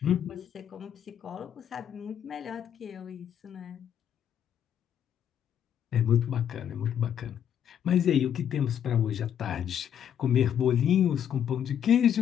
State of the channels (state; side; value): quieter; right; 9.3 dB